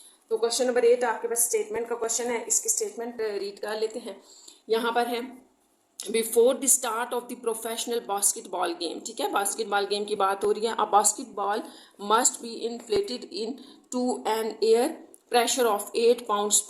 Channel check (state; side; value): identical; both; correlation 1.00